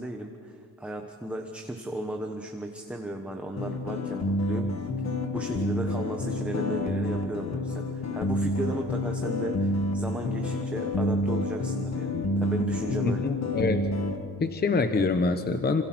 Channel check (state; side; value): normal; both; correlation 0.51